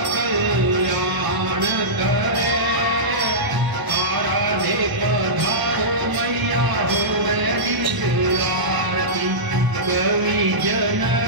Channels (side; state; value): left; late; 1.0 ms